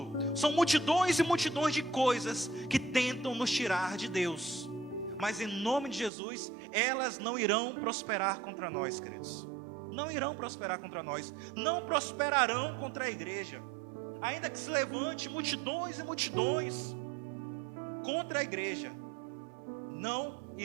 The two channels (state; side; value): drops out; left; at 6.1 s